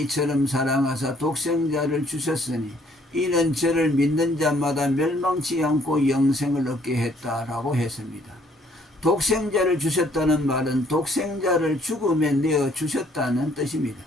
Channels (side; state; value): both; normal; correlation 0.63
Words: 사랑하사 독생자를 주셨으니 이는 저를 믿는 자마다 멸망치 않고 영생을 얻게 했다라고 했습니다. 독생자를 주셨다는 말은 독생자를 죽음에 내어 주셨다는 뜻입니다.